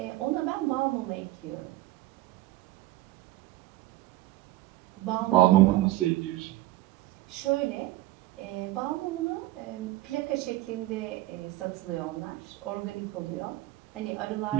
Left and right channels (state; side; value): quieter; left; 17.5 dB